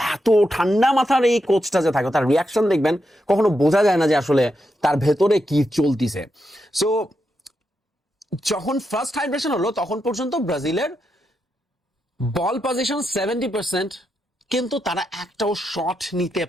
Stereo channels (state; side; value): normal; both; correlation 0.85